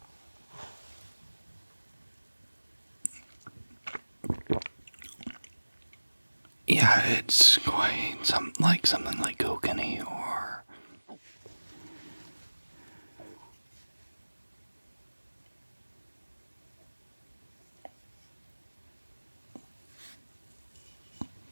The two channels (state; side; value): inverted; both; correlation -1.00